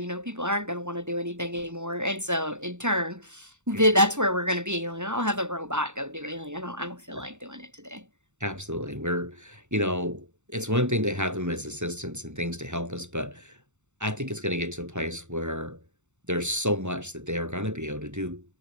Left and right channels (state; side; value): late; left; 0.84 ms